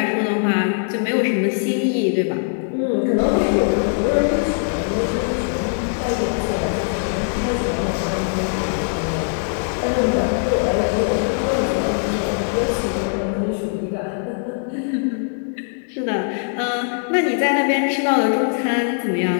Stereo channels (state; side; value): silent; right; digital silence